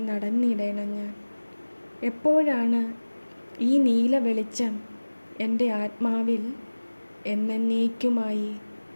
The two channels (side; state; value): both; inverted; correlation -1.00